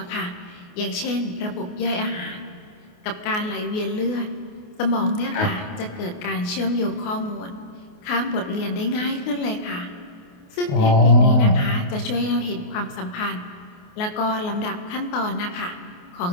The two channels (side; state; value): right; late; 28 ms